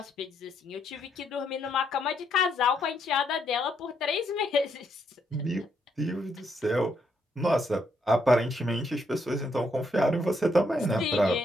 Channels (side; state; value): both; normal; correlation 0.75